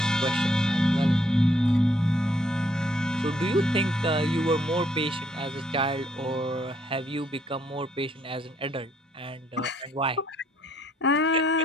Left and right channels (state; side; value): normal; both; correlation 0.69